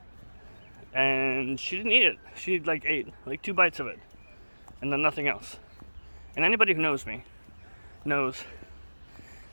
And she didn't eat it. She ate 2 bites of it. And then nothing else. And anybody who knows me knows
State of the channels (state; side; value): inverted; both; correlation -1.00